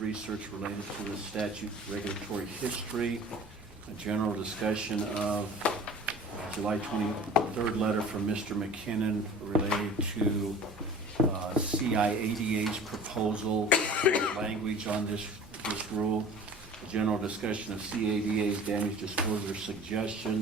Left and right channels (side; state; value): both; normal; correlation 0.43